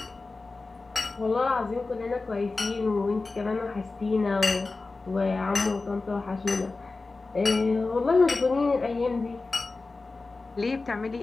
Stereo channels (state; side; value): quieter; right; 3.6 dB